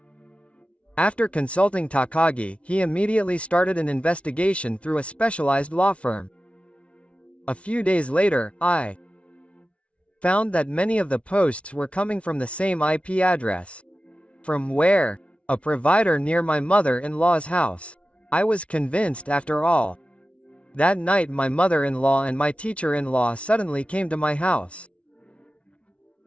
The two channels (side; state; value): right; late; 0.062 ms